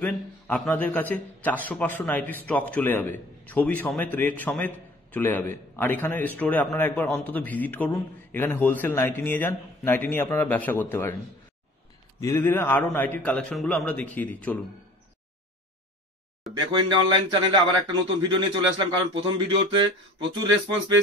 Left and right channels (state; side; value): normal; both; correlation 0.47